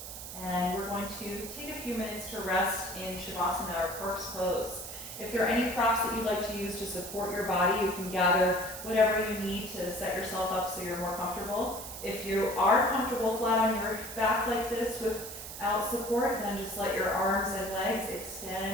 And we're going to take a few minutes to rest in Shavasana or corpse pose. If there are any props that you'd like to use to support your body, you can gather whatever you need to set yourself up so you're more comfortable. If you are comfortable flat on your back like this without support, then just let your arms and legs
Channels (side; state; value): right; noise; hiss, 10 dB below the sound